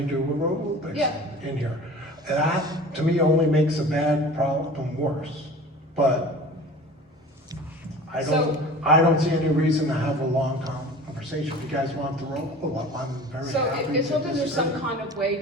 do aerobics Yeah. in here. That, to me, only makes a bad problem worse. But I don't see any reason to have a long conversation. If you guys want the roll up, I'm very So happy as to long as there's some disagree. kind of way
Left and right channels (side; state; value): both; normal; correlation 0.41